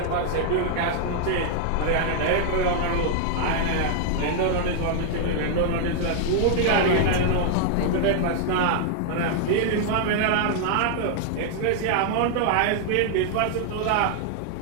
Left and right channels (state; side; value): different; both; correlation 0.00